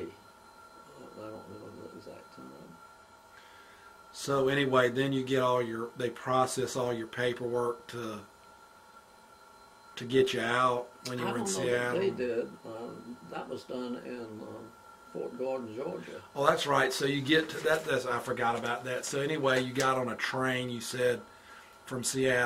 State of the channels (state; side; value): identical; both; correlation 1.00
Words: I don't remember the exact time. So anyway, then you get they process all your paperwork to get you out when you were in Seattle. I don't know that they did. That was done in Fort Gordon, Georgia. Oh, that's right. So you get to that. I forgot about that. So anyway, you got on a train, you said, from